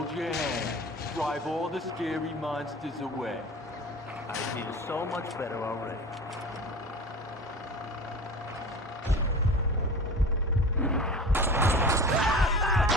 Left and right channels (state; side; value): normal; both; correlation 0.35